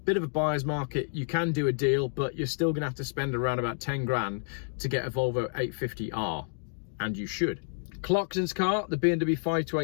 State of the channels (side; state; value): right; silent; digital silence